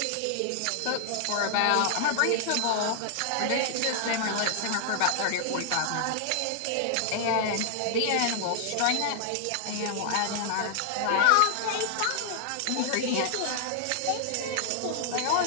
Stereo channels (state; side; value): different; both; correlation -0.01